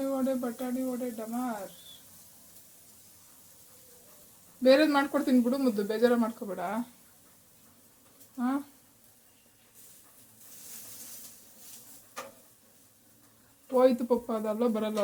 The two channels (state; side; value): identical; both; correlation 1.00